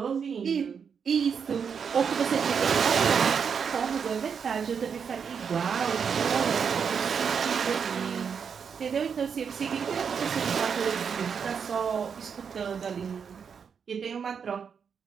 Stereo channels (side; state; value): left; quieter; 6.7 dB